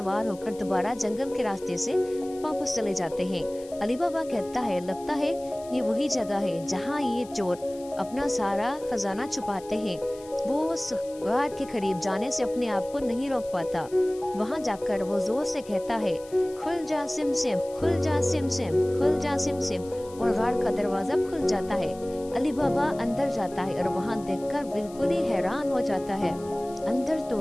होकर दोबारा जंगल के रास्ते से वापस चले जाते हैं। अली बाबा कहता है, लगता है ये वही जगह है जहाँ ये चोर अपना सारा खजाना छुपाते हैं। वो उस गार के करीब जाने से अपने आप को नहीं रोक पाता। वहाँ जाकर वो जोर से कहता है, खुल जा सिमसिम, खुल जा सिमसिम, खुल जा सिमसिम, और गार का दरवाज़ा खुल जाता है। अली बाबा अंदर जाता है और वहाँ देखकर बिल्कुल ही हैरान हो जाता है। अंदर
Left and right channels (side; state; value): left; noise; hiss, 22 dB below the sound